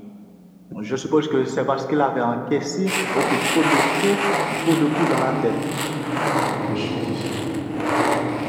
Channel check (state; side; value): identical; both; correlation 1.00